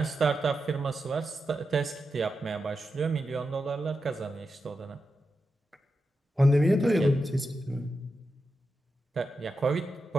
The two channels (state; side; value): normal; both; correlation 0.89